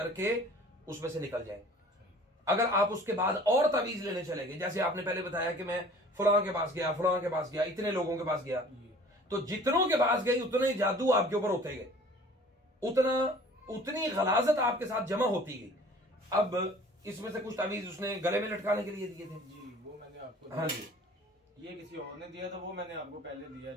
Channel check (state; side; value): normal; both; correlation 0.49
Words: उसमें से निकल जाएंगे। अगर आप उसके बाद और तावीज लेने चले गए, जैसे आपने पहले बताया कि मैं फलां के पास गया, फलां के पास गया, इतने लोगों के पास गया, तो जितनों के पास गए उतने जादू आपके ऊपर होते गए, उतनी गलाजत आपके साथ जमा होती गई। अब इसमें से कुछ तावीज उसने गले में लटकाने के लिए दिए थे जी, वो मैंने आपको। हाँ जी, ये किसी और ने दिया था, वो मैंने आपको पहले दिया।